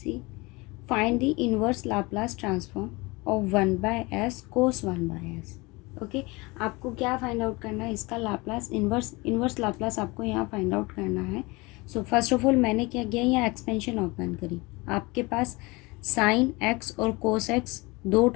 C find the inverse Laplace transform of 1/s cos 1/s। Okay, आपको क्या find out करना है, इसका लाप्लास इनवर्स लाप्लास आपको यहाँ फाइंड आउट करना है। सो फर्स्ट ऑफ ऑल मैंने क्या किया, यहाँ एक्सपेंशन ओपन करी। आपके पास साइन एक्स और कोस एक्स दो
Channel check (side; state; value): right; quieter; 24.5 dB